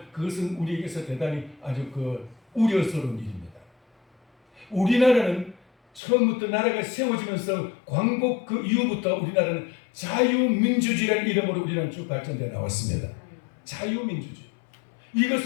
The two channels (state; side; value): drops out; right; at 6.0 s